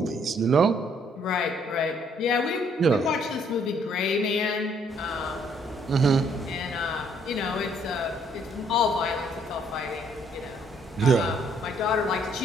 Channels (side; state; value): both; normal; correlation 0.66